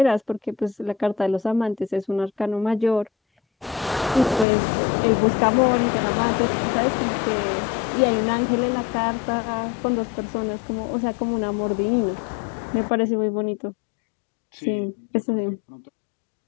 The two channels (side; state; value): right; drops out; at 4.5 s